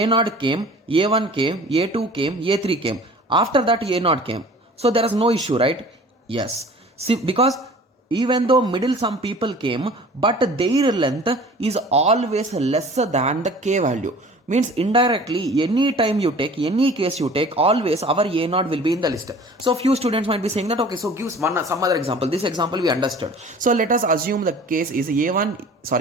came, a1 came, a2 came, a3 came, after that a0 came, so there is no issue, right? Yes. See, because even though middle some people came, but their length is always lesser than the k value, means indirectly any time you take, any case you take, always our a0 will be in the list. So few students might be saying that, okay, so gives some other example. This example we understood. So let us assume the case is a0,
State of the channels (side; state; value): both; normal; correlation 0.45